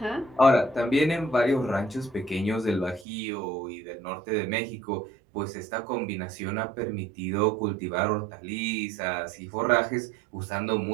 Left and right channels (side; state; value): left; drops out; at 3.1 s